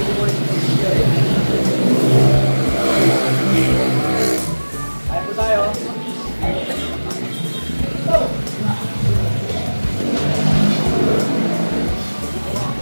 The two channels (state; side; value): inverted; both; correlation -1.00